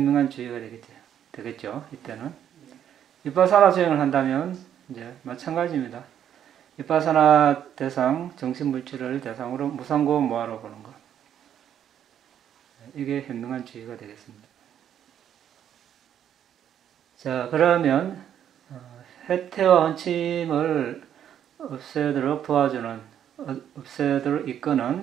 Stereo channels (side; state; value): left; quieter; 9.8 dB